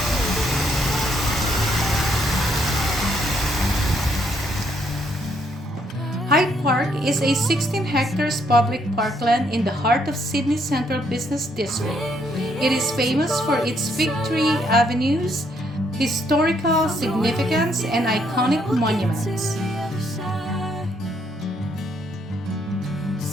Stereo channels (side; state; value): both; normal; correlation 0.71